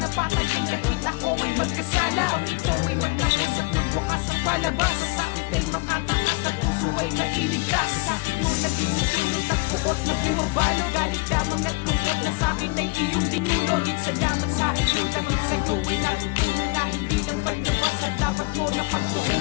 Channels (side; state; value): right; quieter; 27.2 dB